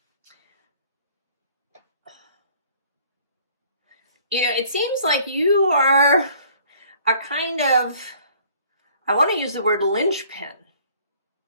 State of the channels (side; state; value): both; inverted; correlation -0.56